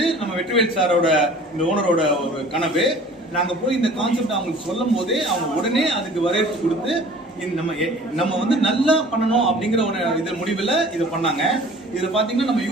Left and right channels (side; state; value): both; normal; correlation 0.47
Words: நம்ம வெற்றிவேல் சாரோட, இந்த ஓனரோட ஒரு கனவு. நாங்க போய் இந்த கான்செப்ட் அவங்களுக்கு சொல்லும் போதே அவங்க உடனே அதுக்கு வரவேற்பு கொடுத்து நம்ம வந்து நல்லா பண்ணணும் அப்படிங்கிற ஒரு இது முடிவில் இதை பண்ணாங்க. இதில் பார்த்தீங்கன்னா நம்ம